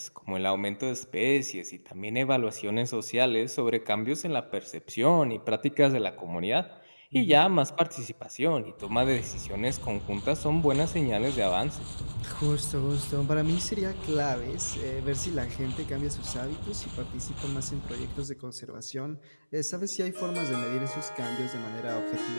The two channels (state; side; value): inverted; both; correlation -1.00